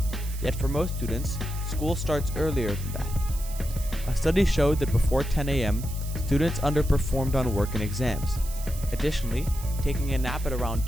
Yet for most students, school starts earlier than that. A study showed that before 10 a.m., students underperformed on work and exams. Additionally, taking a nap at around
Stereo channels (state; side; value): noise; right; hiss, 14 dB below the sound